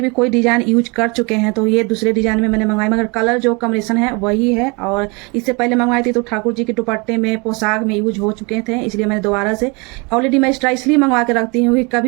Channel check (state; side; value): quieter; left; 29.5 dB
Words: भी कोई डिज़ाइन यूज कर चुके हैं तो ये दूसरे डिज़ाइन में मैंने मंगाई, मगर कलर जो कॉम्बिनेशन है वही है। और इससे पहले मंगवाई थी तो ठाकुर जी के दुपट्टे में, पोशाक में यूज हो चुके थे, इसलिए मैंने दोबारा से ऑलरेडी मैं एक्स्ट्रा इसलिए मंगवा के रखती हूँ कि